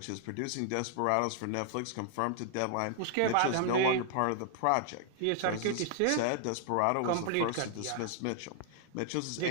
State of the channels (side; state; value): both; different; correlation -0.01